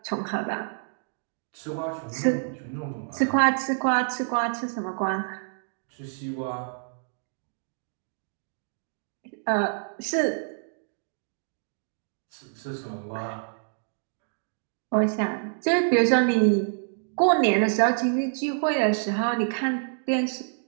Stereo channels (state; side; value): silent; left; digital silence